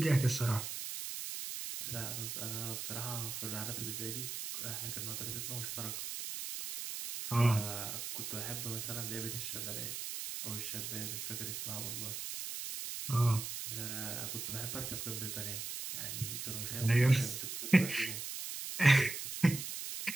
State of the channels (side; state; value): right; noise; hiss, 5 dB below the sound